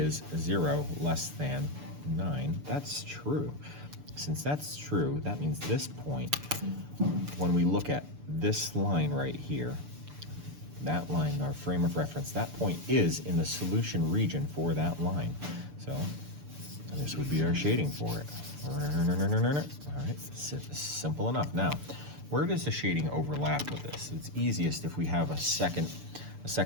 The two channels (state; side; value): late; left; 6.8 ms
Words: 0 less than 9? That's true. Since that's true, that means this point, when we look at this line right here, that line, our frame of reference, that point is in the solution region for that line. So this would be our shading for it. All right, simple enough. Now, where does the shading overlap with this? It's easiest if we have a second